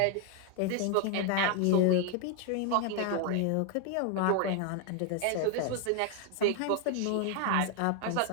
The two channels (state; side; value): different; both; correlation 0.01